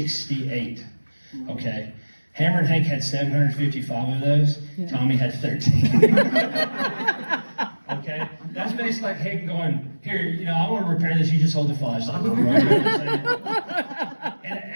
okay? Hammer and Hank had 755 of those. Tommy had 13. Okay? That's basically like Hank going, here, you know, I want to repair this, you just hold the flashlight. Right? And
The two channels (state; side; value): inverted; both; correlation -1.00